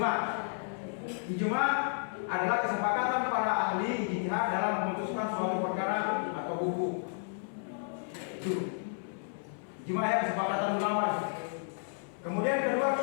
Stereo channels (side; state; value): right; silent; 56 dB below the other